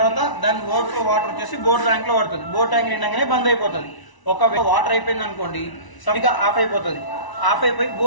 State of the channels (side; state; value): right; late; 1.0 ms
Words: దాని ఓవర్ఫ్లో వాటర్ వచ్చేసి బోర్ ట్యాంక్ లో పడుతుంది. బోర్ ట్యాంక్ నిండగానే బంద్ అయిపోతుంది. ఒకవేళ వాటర్ అయిపోయింది అనుకోండి సరిగా ఆఫ్ అయిపోతుంది. ఆఫ్ అయిపోయి